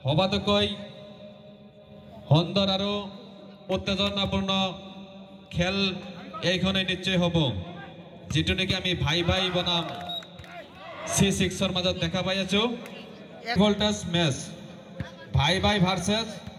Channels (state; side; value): identical; both; correlation 1.00